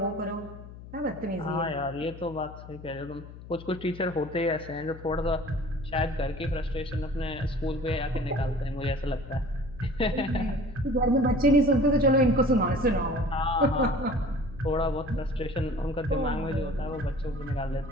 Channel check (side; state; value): left; noise; hum, 15 dB below the sound